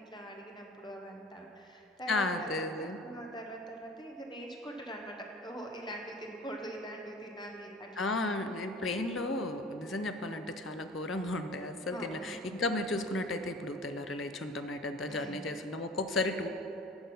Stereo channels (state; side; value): normal; both; correlation 0.43